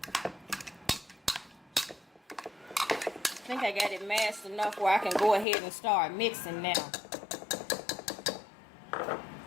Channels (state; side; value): drops out; right; at 5.5 s